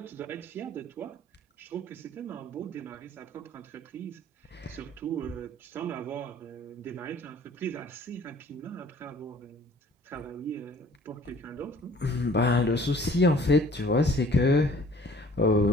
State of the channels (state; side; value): normal; both; correlation 0.53